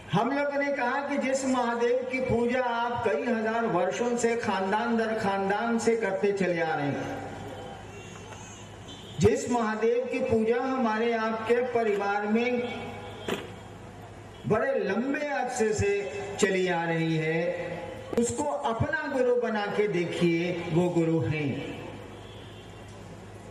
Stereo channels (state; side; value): identical; both; correlation 1.00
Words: हम लोगों ने कहा कि जिस महादेव की पूजा आप कई हजार वर्षों से खानदान दर खानदान से करते चले आ रहे हैं, जिस महादेव की पूजा हमारे आपके परिवार में बड़े लंबे अरसे से चली आ रही है, उसको अपना गुरु बना के देखिए, वो गुरु हैं।